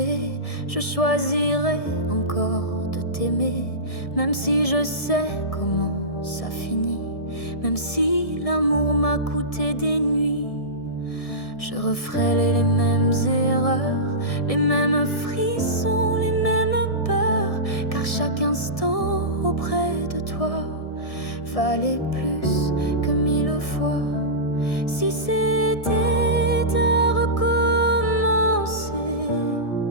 je choisirais encore de t'aimer. Même si je sais comment ça finit, même si l'amour m'a coûté des nuits, je referais les mêmes erreurs, les mêmes frissons, les mêmes peurs. Car chaque instant auprès de toi valait plus que 1000 fois. Si c'était à recommencer,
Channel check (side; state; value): right; late; 1.6 ms